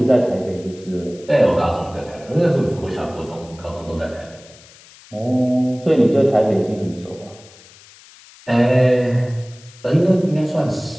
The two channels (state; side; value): noise; left; hiss, 23 dB below the sound